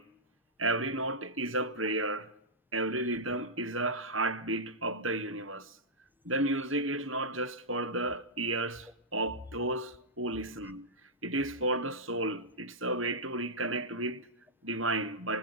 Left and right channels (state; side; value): normal; both; correlation -0.11